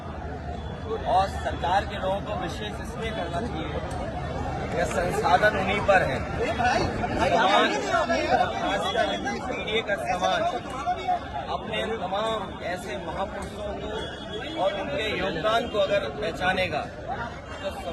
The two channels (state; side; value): identical; both; correlation 1.00